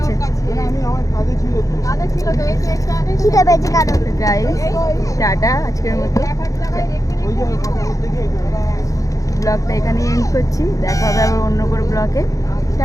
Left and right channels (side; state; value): right; late; 0.16 ms